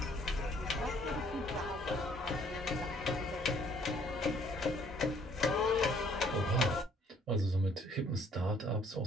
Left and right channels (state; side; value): normal; both; correlation 0.62